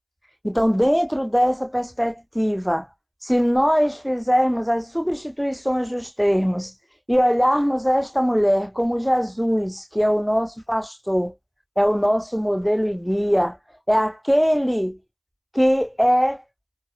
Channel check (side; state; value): both; identical; correlation 1.00